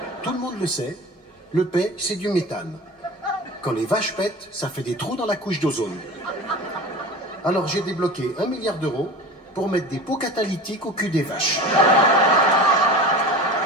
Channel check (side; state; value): both; normal; correlation 0.35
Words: tout le monde le sait, le paix, c'est du méthane. Quand les vaches pètent, ça fait des trous dans la couche d'ozone. Alors j'ai débloqué 1 milliard d'euros pour mettre des pots catalytiques au cul des vaches.